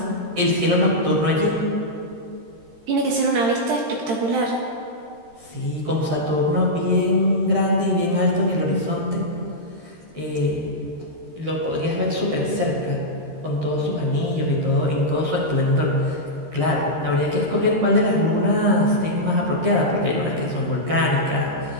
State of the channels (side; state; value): left; late; 13 ms